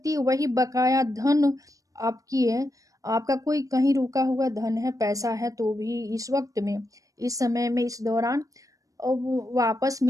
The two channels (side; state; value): left; late; 0.16 ms